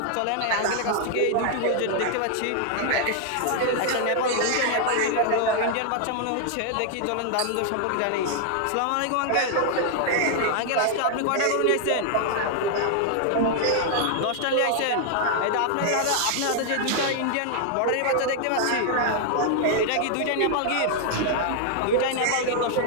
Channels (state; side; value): different; both; correlation 0.00